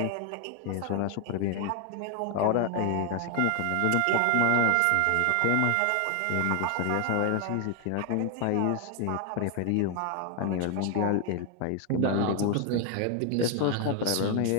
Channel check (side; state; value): both; different; correlation 0.01